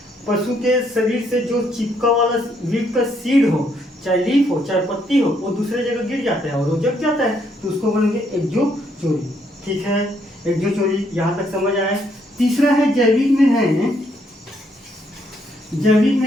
के शरीर से जो चिपका वाला वीट का सीड हो, चाहे लीफ हो चाहे पत्ती हो, वो दूसरे जगह गिर जाता है और वो जग जाता है, तो उसको बोलेंगे एक्जो चोरी, ठीक है। एक्जो चोरी यहाँ तक समझ आया। तीसरा है जैविक में है, जैविक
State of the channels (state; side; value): normal; both; correlation 0.72